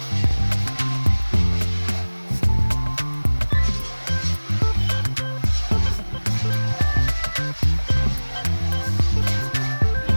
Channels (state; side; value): inverted; both; correlation -1.00